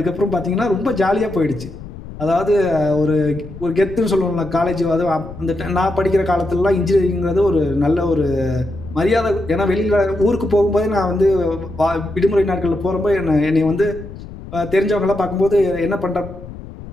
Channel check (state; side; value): noise; left; rumble, 14 dB below the sound